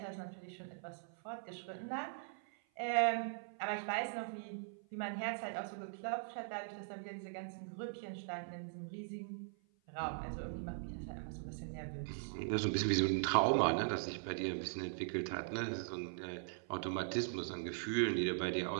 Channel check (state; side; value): silent; left; 51 dB below the other